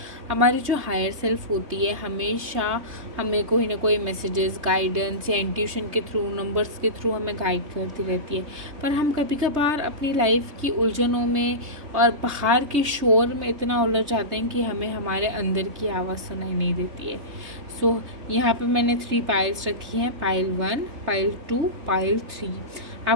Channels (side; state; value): left; late; 3.2 ms